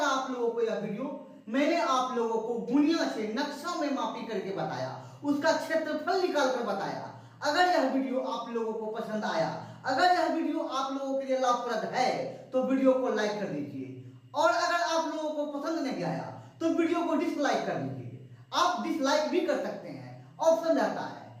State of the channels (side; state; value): both; identical; correlation 1.00